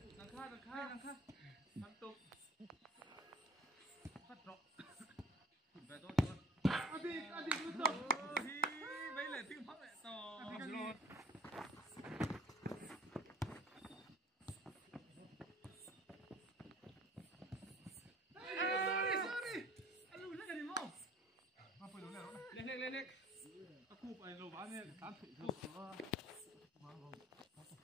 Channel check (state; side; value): normal; both; correlation 0.45